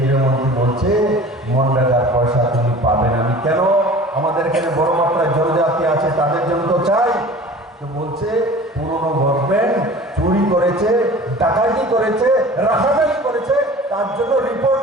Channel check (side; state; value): both; normal; correlation 0.42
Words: মন্ত্রী বলছে মনরেগার পয়সা তুমি পাবে না। আমি কেন? আমাদের এখানে বড় মাত্রায় জনজাতি আছে, তাদের জন্য তো চাই। তো বলছে পুরনো গভর্নমেন্ট চুরি করেছে, ডাকাতি করেছে, রাহাজানি করেছে, তার জন্য রিপোর্ট